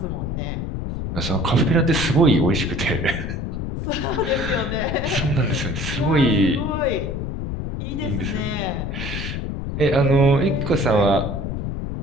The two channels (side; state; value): left; noise; rumble, 4 dB below the sound